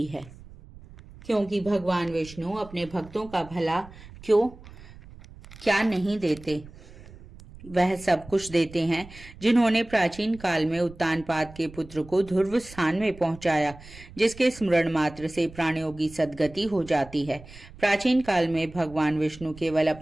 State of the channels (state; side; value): noise; right; rumble, 19 dB below the sound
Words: है, क्योंकि भगवान विष्णु अपने भक्तों का भला क्या नहीं देते। वह सब कुछ देते हैं जिन्होंने प्राचीन काल में उत्तानपाद के पुत्र को ध्रुव स्थान में पहुंचाया, जिसके स्मरण मात्र से प्राणियों की सद्गति हो जाती है। प्राचीन काल में भगवान विष्णु केवल